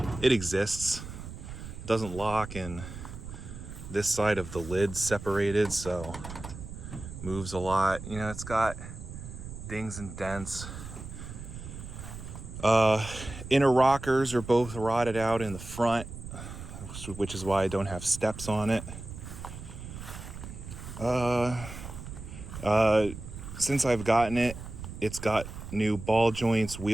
It exists. It doesn't lock, and this side of the lid's separated, so moves a lot. You know, it's got dings and dents. Inner rockers are both rotted out in the front, which is why I don't have steps on it. Since I've gotten it, it's got new ball joints,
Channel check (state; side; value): noise; right; rumble, 11 dB below the sound